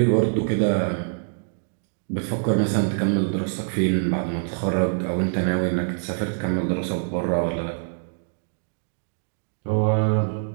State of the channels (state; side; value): silent; left; digital silence